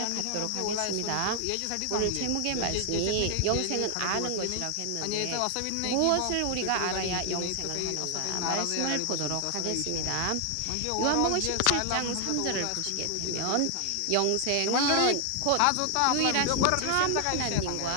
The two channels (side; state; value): both; different; correlation 0.00